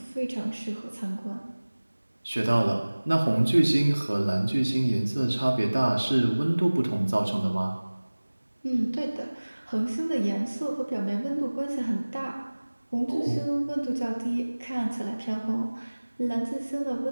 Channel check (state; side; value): inverted; both; correlation -1.00